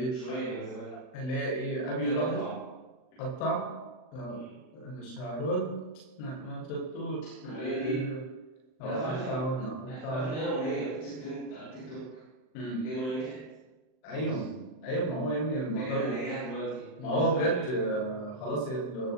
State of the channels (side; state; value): right; late; 39 ms